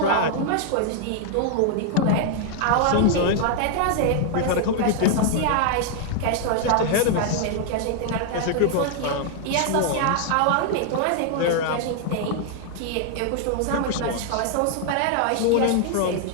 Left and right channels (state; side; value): different; both; correlation 0.00